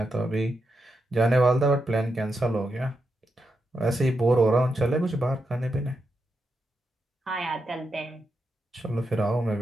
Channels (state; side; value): normal; both; correlation 0.85